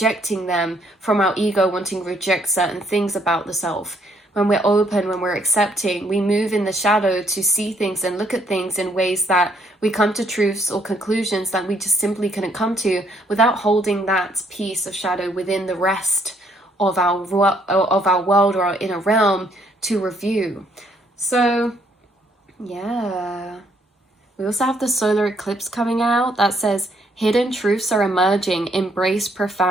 them from our ego wanting to reject certain things about the self. When we're open, when we're accepting, we move in the shadow to see things and look at things in ways that we come to truths or conclusions that we just simply couldn't come to without holding that piece of shadow within the rest of our world or our inner realm to review. So, yeah. We also have the solar eclipse coming out that says, hidden truths are emerging, embrace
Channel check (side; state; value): both; normal; correlation 0.69